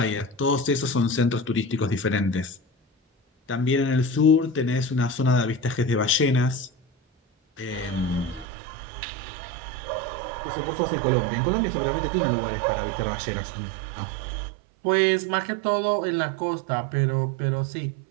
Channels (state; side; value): drops out; left; at 8.5 s